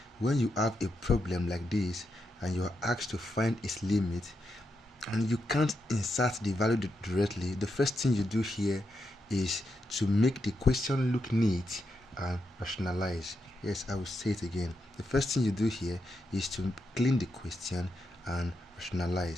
when you have a problem like this and you are asked to find its limit and you can't insert the value directly, the first thing you do here is to make the question look neat and rationalize. Yes, I will say it again. The first thing you do here is to clean the question and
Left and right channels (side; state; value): both; normal; correlation 0.84